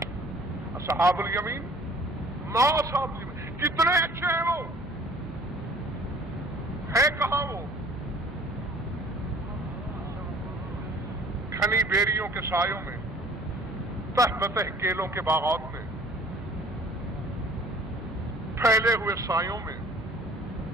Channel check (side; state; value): both; normal; correlation 0.51